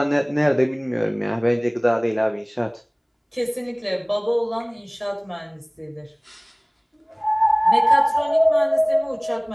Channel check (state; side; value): identical; both; correlation 1.00